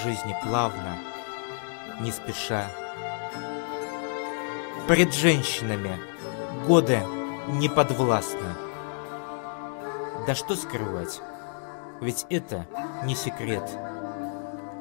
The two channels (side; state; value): right; silent; 59 dB below the other